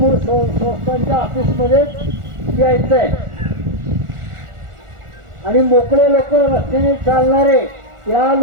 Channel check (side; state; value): left; late; 1.4 ms